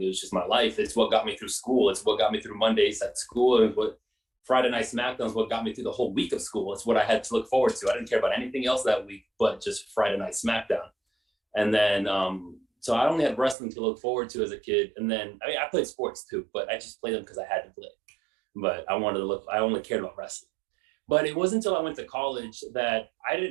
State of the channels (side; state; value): left; drops out; at 13.6 s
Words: It was just my life. It's what got me through school. It's what got me through Mondays at school. And what Friday Night SmackDown is what got me through the whole week of school. It's what I had to look forward to. I didn't care about anything else that week, but just Friday Night SmackDown. And then, so I only had wrestling to look forward to as a kid. And then, I played sports too, but I just played them because I had to play. But I only cared about wrestling. But it wasn't until I went to college that I